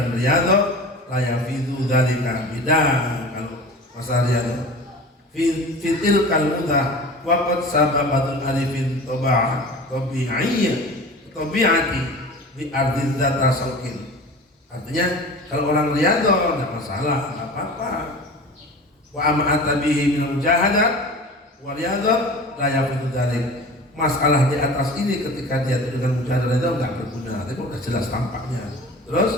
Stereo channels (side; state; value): both; normal; correlation 0.37